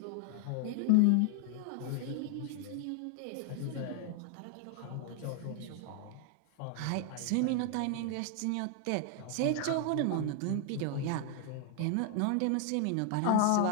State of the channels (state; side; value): different; both; correlation 0.00